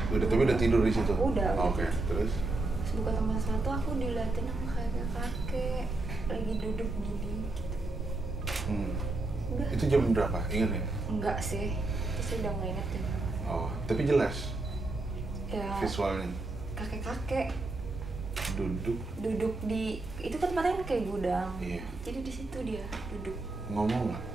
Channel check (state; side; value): quieter; left; 3.0 dB